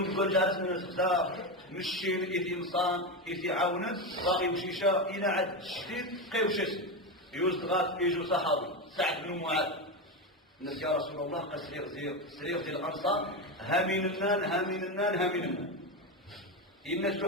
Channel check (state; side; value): normal; both; correlation 0.14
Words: نقول جالس من الخزاف مشين إذ إنسان إذ عاونا باغي يمشيشا إلى عد الشديد قيوشس يوزغات يجو صحابي سعد بن معاذ الناس يا رسول الله قال سرير ديال الأنصار هامين النان الناس